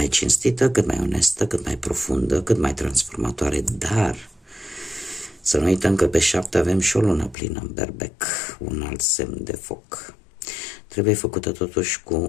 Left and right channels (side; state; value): right; drops out; at 7.4 s